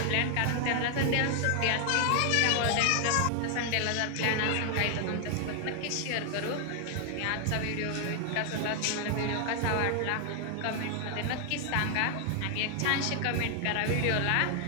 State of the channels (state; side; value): different; both; correlation 0.00